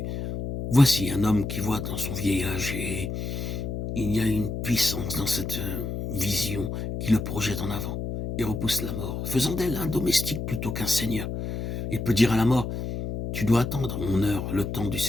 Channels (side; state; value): left; noise; hum, 4 dB below the sound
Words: Voici un homme qui voit dans son vieillage et il y a une puissance dans cette vision qui le projette en avant et repousse la mort, faisant d'elle un domestique plutôt qu'un seigneur. Il peut dire à la mort, tu dois attendre mon heure, le temps du